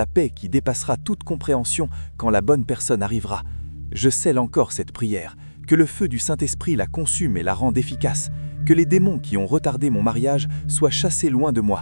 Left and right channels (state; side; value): inverted; both; correlation -1.00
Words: paix qui dépassera toute compréhension quand la bonne personne arrivera. Je scelle encore cette prière. Que le feu du Saint-Esprit la consume et la rende efficace. Que les démons qui ont retardé mon mariage soient chassés loin de